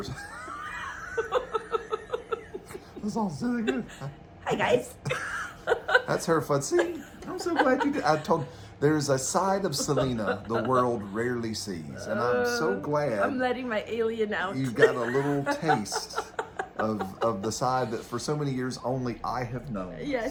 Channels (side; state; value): both; identical; correlation 1.00